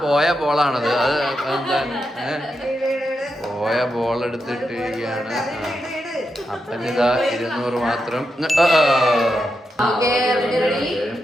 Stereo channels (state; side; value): normal; both; correlation 0.86